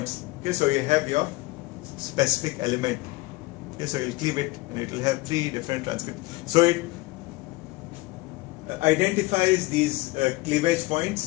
Okay, so you have your specific element. Okay, so you'll cleave it and it will have 3 different transcripts. So it identifies these cleavage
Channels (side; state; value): right; quieter; 21.1 dB